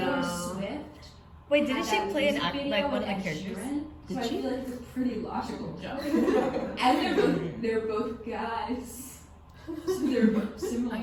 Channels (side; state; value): both; identical; correlation 1.00